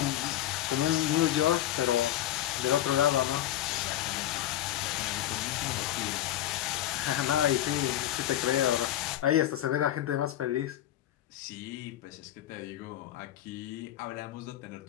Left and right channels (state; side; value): quieter; right; 12.8 dB